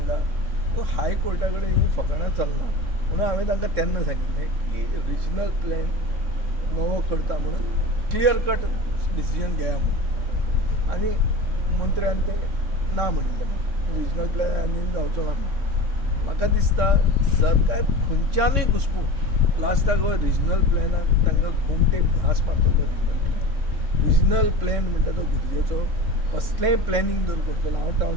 तो हायकोर्टा कडेन ही फकाणां चलना. म्हणून हांवें तांकां तेन्ना सांगिल्लें की रिजनल प्लॅन नवो करता म्हणून क्लियर कट डिसिजन घेया म्हणून. आनी मंत्र्यान तें ना म्हणिल्लें, रिजनल प्लॅन आनी जावचो ना म्हणून. म्हाका दिसता सरकार खंयच्यानूय घुसपून लास्टाक हो रिजनल प्लॅनाक तांकां घुमटे घास मारतलो. रिजनल प्लॅन म्हणटा तो गरजेचो. कसलेंय प्लॅनिंग जर करतलो, हांव टावन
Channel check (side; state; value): left; late; 3.6 ms